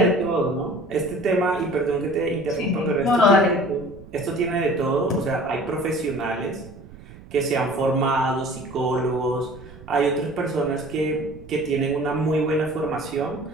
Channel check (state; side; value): noise; right; rumble, 18 dB below the sound